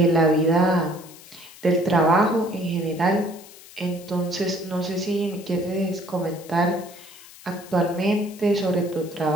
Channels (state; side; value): noise; left; hiss, 20 dB below the sound